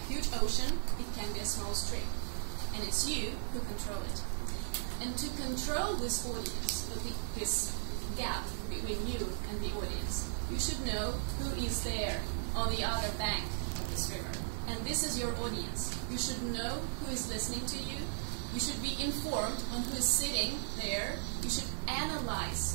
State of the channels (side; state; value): left; silent; 54 dB below the other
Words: huge ocean. It can be a small stream. And it's you who control it. And to control this audience, this gap between you and the audience, you should know who is there on the other bank of this river. And this is your audience. You should know who is listening to you. You should be informed on who is sitting there. You should